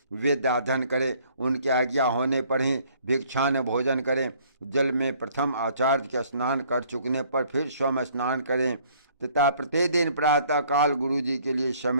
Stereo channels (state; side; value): inverted; both; correlation -0.60